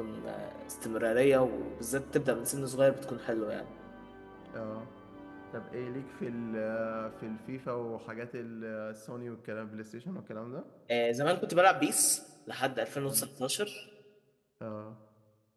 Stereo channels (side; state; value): both; identical; correlation 1.00